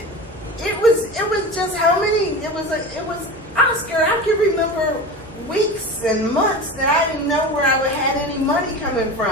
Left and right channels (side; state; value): both; normal; correlation 0.30